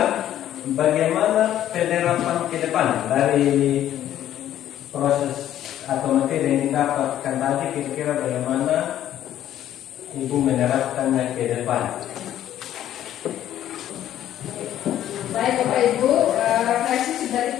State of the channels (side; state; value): right; quieter; 11.8 dB